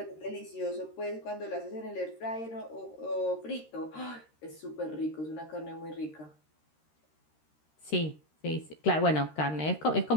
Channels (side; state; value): right; late; 13 ms